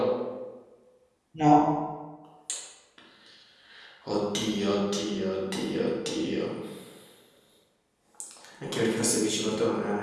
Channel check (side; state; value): both; identical; correlation 1.00